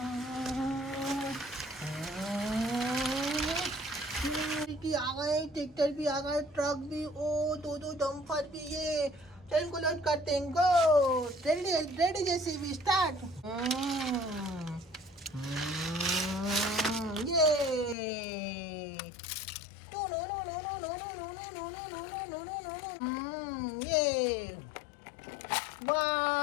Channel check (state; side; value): drops out; right; at 17.9 s